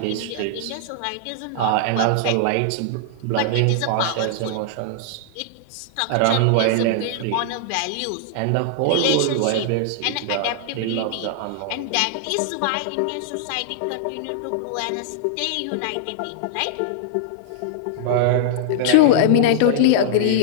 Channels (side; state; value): both; different; correlation -0.01